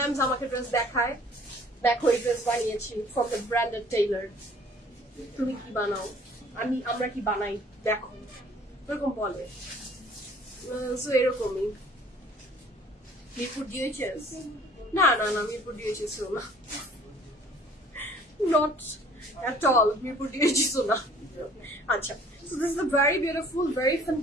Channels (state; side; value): normal; both; correlation 0.54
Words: আমাকে ড্রেস দেখায়, দেখো এই ড্রেস বানিয়েছি ফ্রম দ্য ব্র্যান্ডেড টেইলার, তুমি কি বানাও, আমরা কি বানাই দেখো, এরকম বলে। সো এরকমই। মিরপুর ডিএইচএস না না না, মিরপুর ডিএইচএস না, not at all, Mirpur DHS না। আচ্ছা, so this is a very beautiful, very